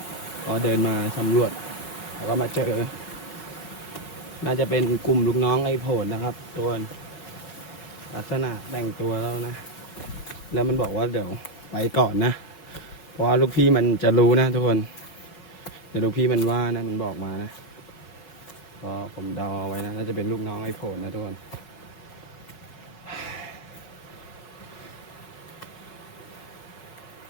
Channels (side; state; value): right; late; 5.3 ms